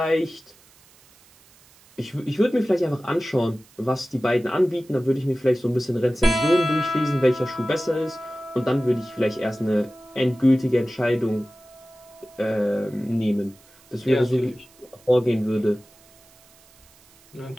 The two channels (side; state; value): right; noise; hiss, 28 dB below the sound